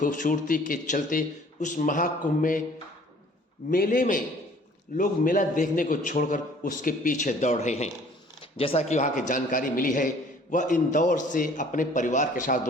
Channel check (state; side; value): normal; both; correlation 0.54